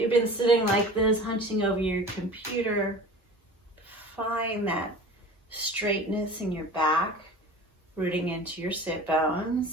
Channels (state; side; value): normal; both; correlation 0.39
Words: been sitting like this, hunching over your computer. Find that straightness in your back, rooting into your sit